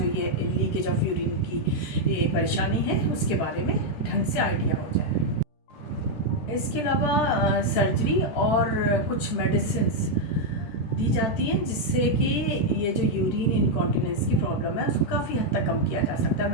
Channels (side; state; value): right; late; 13 ms